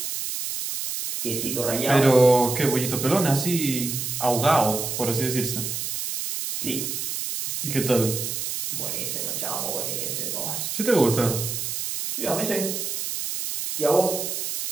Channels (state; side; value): noise; right; hiss, 3 dB below the sound